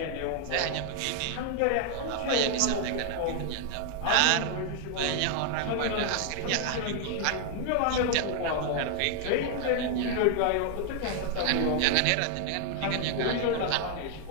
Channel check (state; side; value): different; both; correlation 0.00